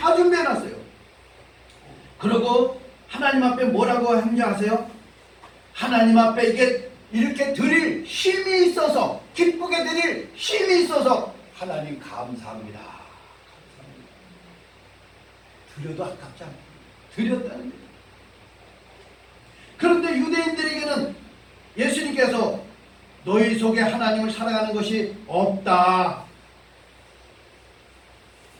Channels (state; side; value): identical; both; correlation 1.00